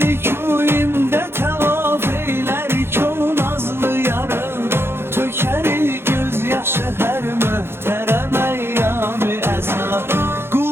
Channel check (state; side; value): late; left; 0.11 ms